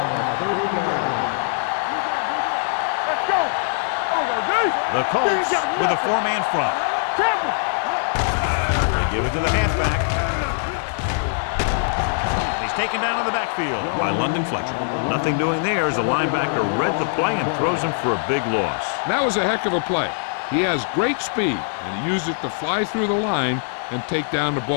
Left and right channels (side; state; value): right; silent; digital silence